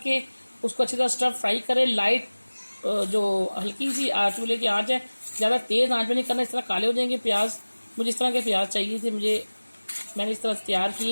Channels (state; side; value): inverted; both; correlation -1.00